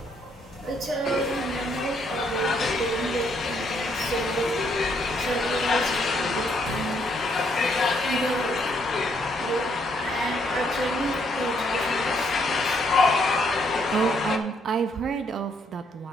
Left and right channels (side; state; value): both; normal; correlation 0.71